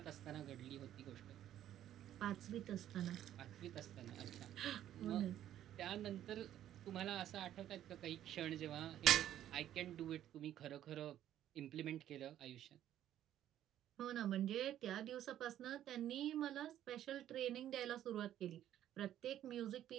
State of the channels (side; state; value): left; quieter; 11.7 dB